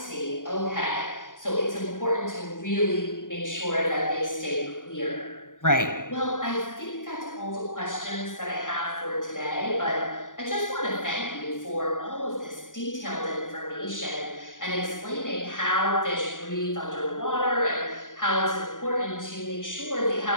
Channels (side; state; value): right; late; 0.88 ms